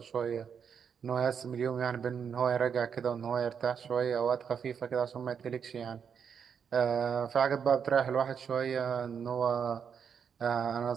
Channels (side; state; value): left; quieter; 7.2 dB